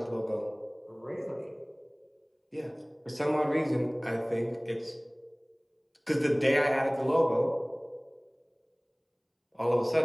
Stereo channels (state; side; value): identical; both; correlation 1.00